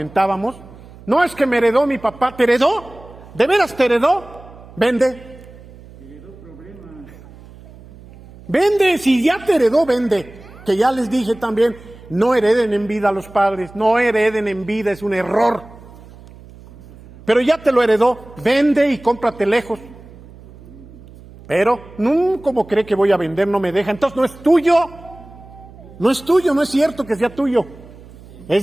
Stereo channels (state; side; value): noise; right; hum, 20 dB below the sound